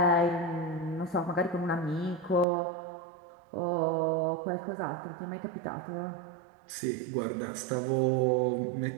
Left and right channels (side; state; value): left; drops out; at 2.5 s